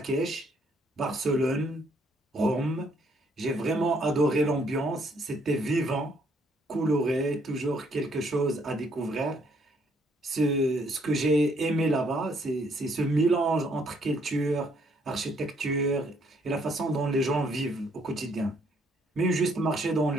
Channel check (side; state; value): both; normal; correlation 0.68